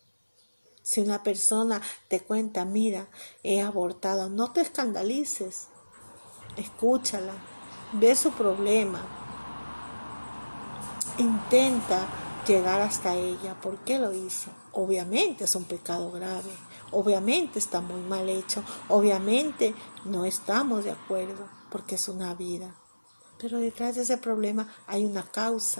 Si una persona te cuenta, mira, he abortado, no te escandalices. Escúchala, ve su problema. Intenta llegar hasta ella. ¿Por qué lo hizo? Obviamente es un pecado grave. Obviamente está muy mal hecho. Obviamente no estamos de acuerdo porque es una vida. Pero detrás de ese problema hay una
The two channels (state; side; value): inverted; both; correlation -1.00